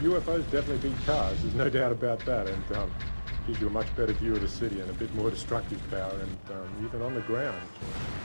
UFOs definitely beat cars, there's no doubt about that, and gives you a much better view of the city and a bit more destructive power, and even on the ground,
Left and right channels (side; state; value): both; inverted; correlation -1.00